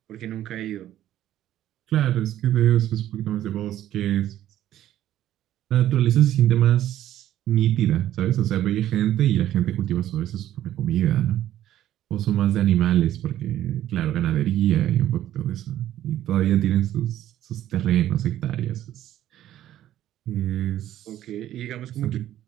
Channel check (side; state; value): left; quieter; 12.5 dB